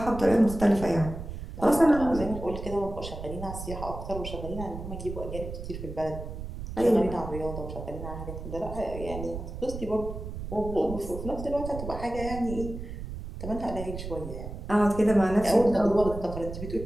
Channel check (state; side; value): noise; right; rumble, 8 dB below the sound